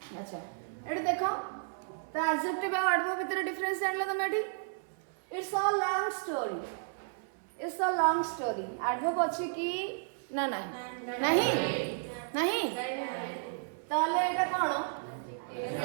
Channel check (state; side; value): silent; left; 56 dB below the other